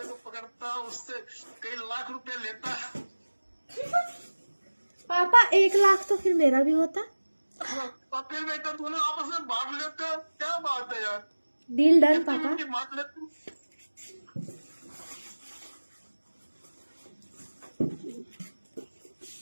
को पकड़ता, उससे कई लाख रुपए लेता। पापा 1 लाख तो फिर मेरा भी होता। और फिर बेटा दोनों आपस में बांट लेते हो, क्या बात है यार? डील डन पापा। बांट लेते।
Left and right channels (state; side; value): inverted; both; correlation -1.00